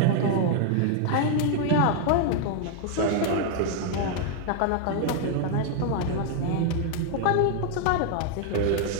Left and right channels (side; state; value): both; different; correlation 0.00